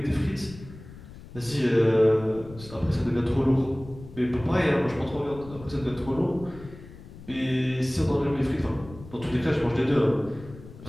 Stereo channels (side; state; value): left; noise; rumble, 17 dB below the sound